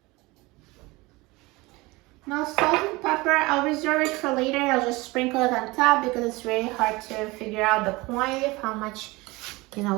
Now salt and pepper, I'll reserve it for later. I'll just sprinkle it on top because it's very hard to figure out the quantity of how much,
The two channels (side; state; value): left; quieter; 22.7 dB